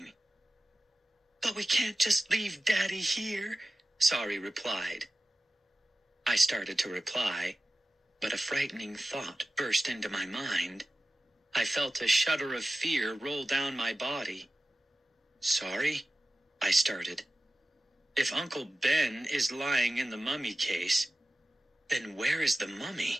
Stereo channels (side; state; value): both; normal; correlation 0.95